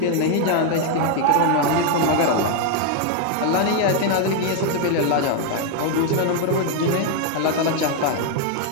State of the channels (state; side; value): different; both; correlation 0.00